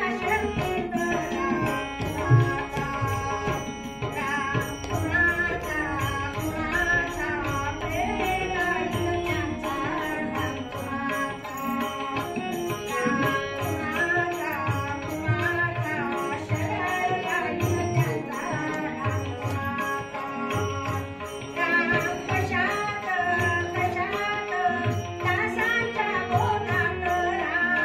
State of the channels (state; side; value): identical; both; correlation 1.00